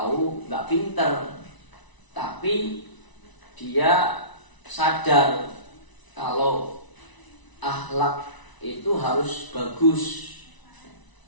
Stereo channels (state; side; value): late; right; 1.0 ms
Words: nggak pinter, tapi dia sadar kalau akhlak itu harus bagus,